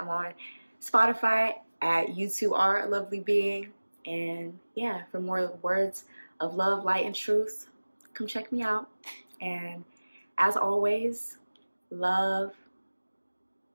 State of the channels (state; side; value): inverted; both; correlation -1.00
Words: on Spotify at You Two Are a Lovely Being. And yeah, for more words of love, light, and truth, come check me out. And as always, love,